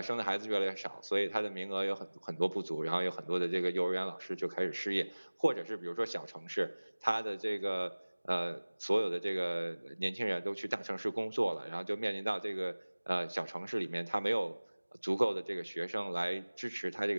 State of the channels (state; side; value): inverted; both; correlation -1.00